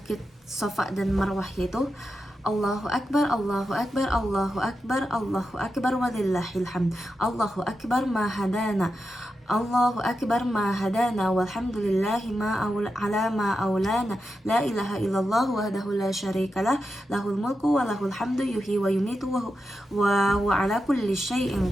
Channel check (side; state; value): both; normal; correlation 0.88